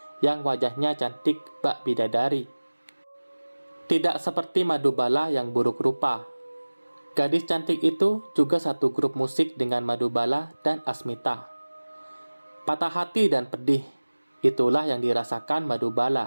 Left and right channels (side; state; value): both; inverted; correlation -1.00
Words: yang wajahnya cantik bak bidadari. Tidak seperti Madubala yang buruk rupa. Gadis cantik itu juga satu grup musik dengan Madubala dan Asmita. Patah hati dan pedih, itulah yang dirasakan